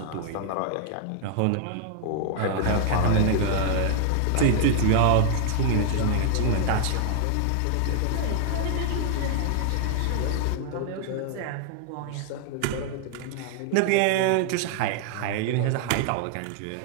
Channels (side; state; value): both; different; correlation -0.01